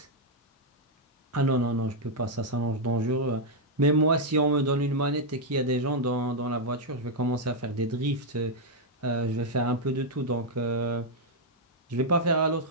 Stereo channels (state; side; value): normal; both; correlation -0.03